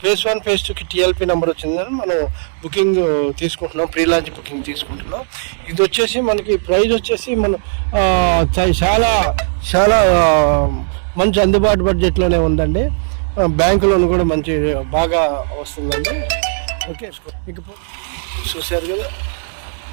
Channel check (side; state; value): left; silent; digital silence